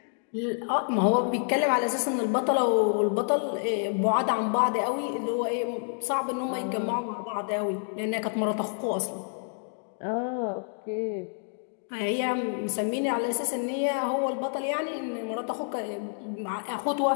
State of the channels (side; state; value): right; silent; digital silence